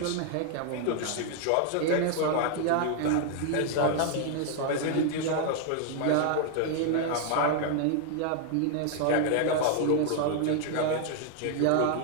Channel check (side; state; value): both; different; correlation 0.00